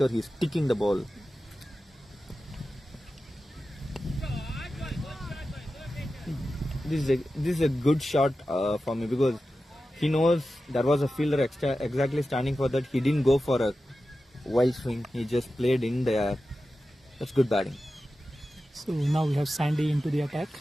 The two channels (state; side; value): normal; both; correlation 0.93